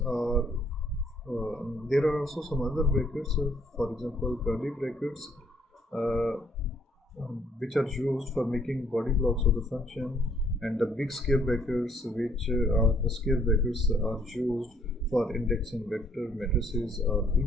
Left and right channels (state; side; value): normal; both; correlation 0.65